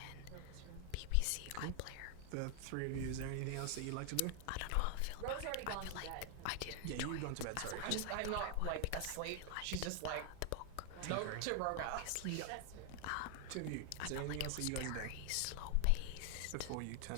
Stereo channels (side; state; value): both; different; correlation 0.00